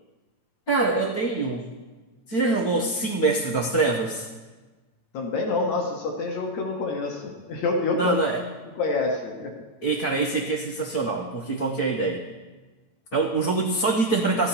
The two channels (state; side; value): late; right; 8.9 ms